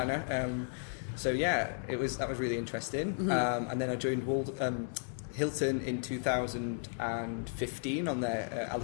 So yeah, that was really interesting. And then I joined Hilton in 2015 on their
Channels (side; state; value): right; silent; digital silence